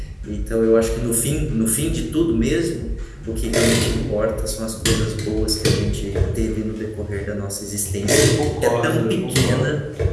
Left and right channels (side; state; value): both; identical; correlation 1.00